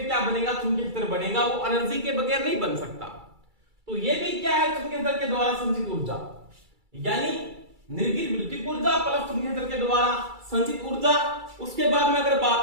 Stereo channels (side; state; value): left; late; 2.3 ms